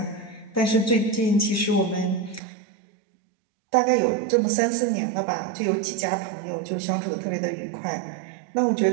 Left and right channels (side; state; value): left; drops out; at 2.4 s